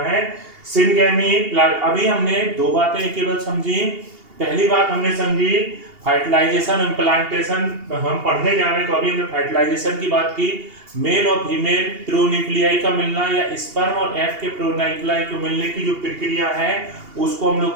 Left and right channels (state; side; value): late; left; 2.8 ms